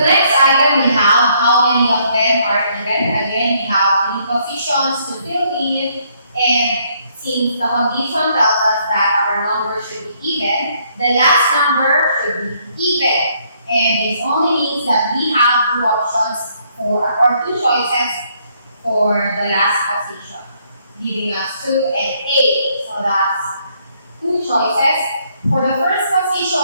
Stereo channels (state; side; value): inverted; both; correlation -0.69